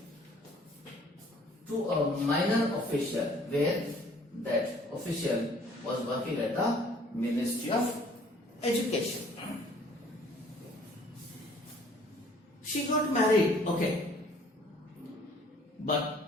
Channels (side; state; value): both; normal; correlation 0.56